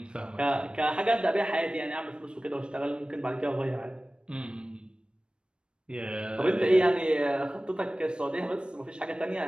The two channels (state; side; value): late; left; 0.054 ms